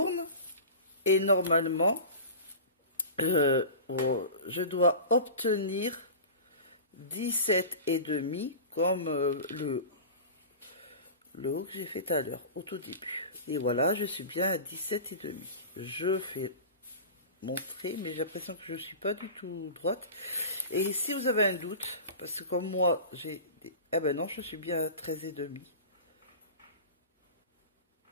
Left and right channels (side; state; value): both; inverted; correlation -0.34